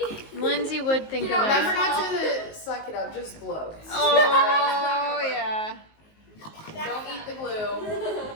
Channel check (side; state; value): right; late; 19 ms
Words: Lindsay would think of Remember that. not to suck it up, just blow. Oh yeah. Don't eat the